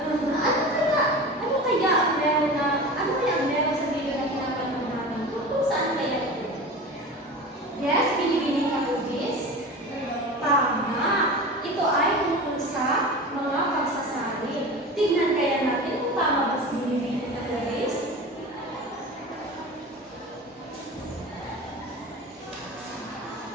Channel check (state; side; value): normal; both; correlation 0.32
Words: kaya ang meron sa video na pinapanood natin? Kung saan kaya ito? Yes, binibining na movies? Tama! Ito ay tungkol sa mga pagsasali. Tignan kaya natin kung tama ba sa binibining na movies?